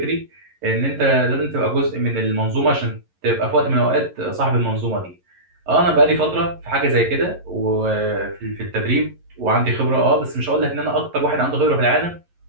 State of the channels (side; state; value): left; late; 11 ms